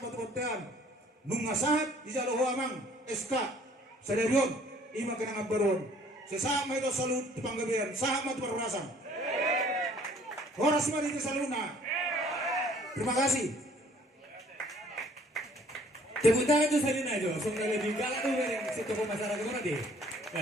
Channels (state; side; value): normal; both; correlation 0.57